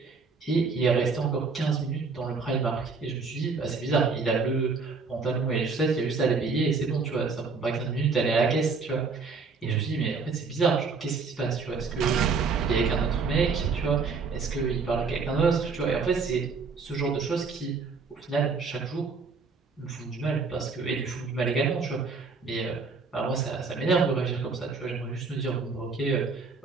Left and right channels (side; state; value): left; quieter; 4.7 dB